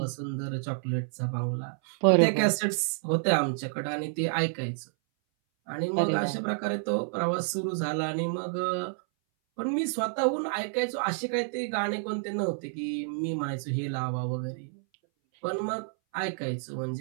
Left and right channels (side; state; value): left; silent; 58 dB below the other